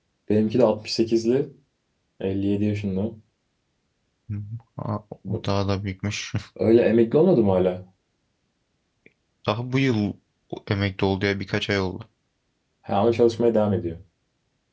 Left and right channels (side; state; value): both; identical; correlation 1.00